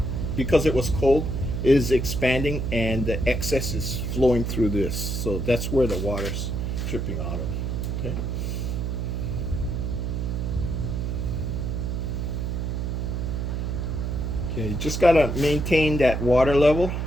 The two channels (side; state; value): right; noise; hum, 1 dB below the sound